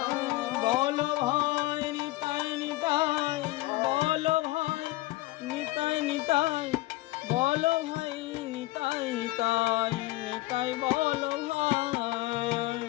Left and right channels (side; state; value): right; quieter; 19.0 dB